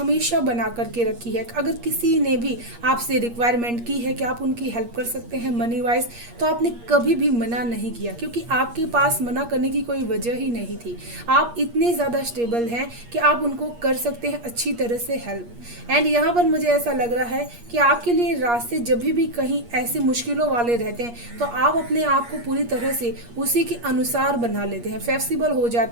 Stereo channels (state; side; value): late; left; 8.5 ms